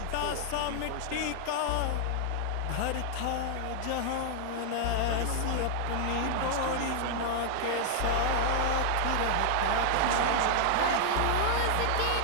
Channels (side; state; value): both; different; correlation 0.00